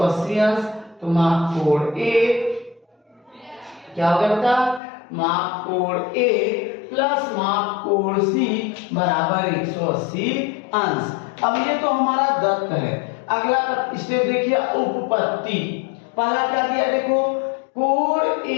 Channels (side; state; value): right; drops out; at 4.8 s